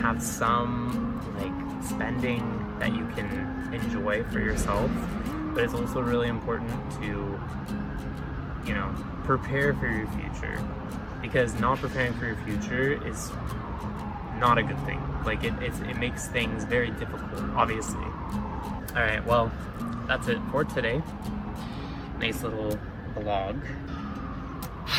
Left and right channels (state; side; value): identical; both; correlation 1.00